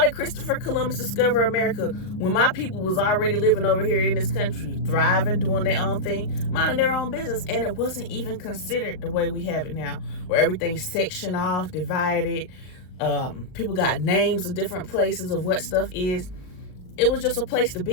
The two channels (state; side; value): late; right; 39 ms